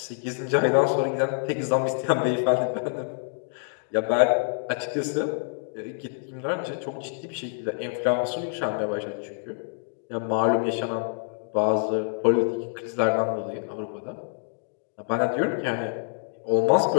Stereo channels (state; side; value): silent; right; digital silence